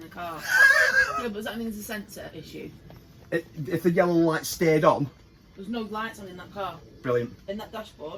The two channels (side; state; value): both; identical; correlation 1.00